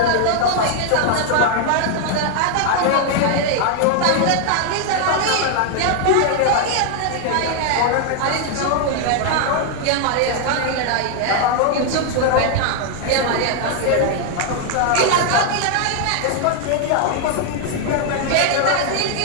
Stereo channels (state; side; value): different; both; correlation 0.00